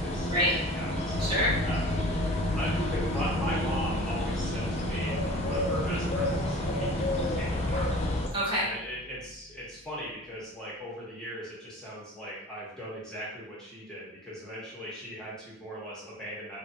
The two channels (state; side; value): normal; both; correlation 0.43